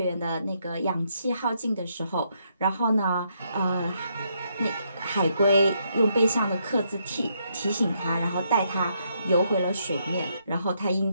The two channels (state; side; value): inverted; both; correlation -0.76